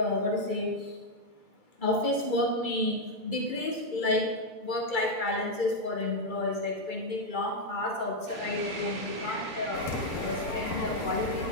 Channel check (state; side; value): late; right; 2.3 ms